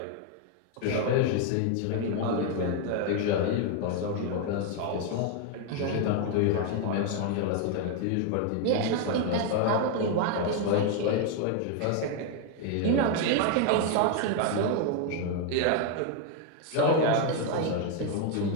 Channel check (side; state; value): both; different; correlation 0.01